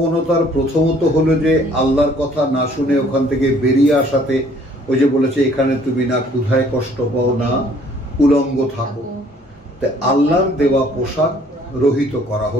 প্রথমত হলো যে আল্লাহর কথা না শুনে ওখান থেকে বেরিয়ে আসাতে, ওই যে বলেছে এখানে তুমি না ক্ষুধায় কষ্ট পাও না উলঙ্গ থাকো, তাই আল্লাহর দেওয়া পোশাক রহিত করা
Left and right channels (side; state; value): both; normal; correlation 0.59